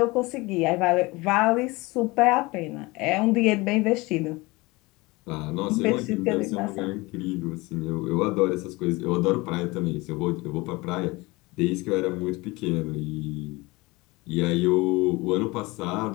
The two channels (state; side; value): quieter; right; 23.1 dB